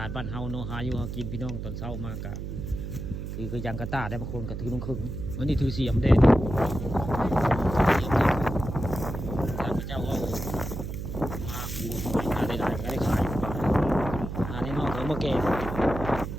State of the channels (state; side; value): noise; right; hum, 6 dB below the sound